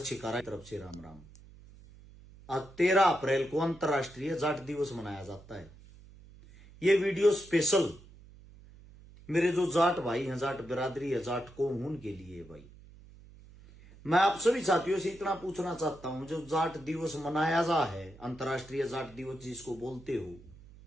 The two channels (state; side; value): noise; right; hum, 21 dB below the sound